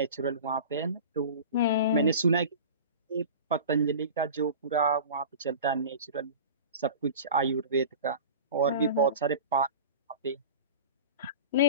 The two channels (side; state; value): both; inverted; correlation -0.35